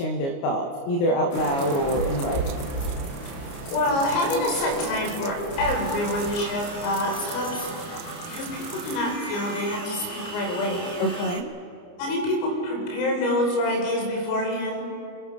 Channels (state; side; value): late; right; 29 ms